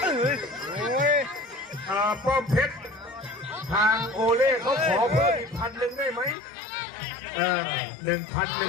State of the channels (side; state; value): right; drops out; at 6.4 s